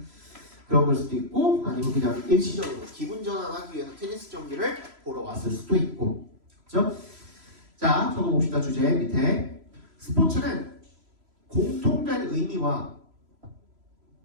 그런 걸 수도 있고, 아니면 그냥 일시적으로 기분 전환하기 위해서 테니스 경기를 보러 왔을 수도 있고, 그렇죠? 자, 적어봅시다. 주제 밑에 스포츠는 공통된 의미와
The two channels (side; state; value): left; late; 3.0 ms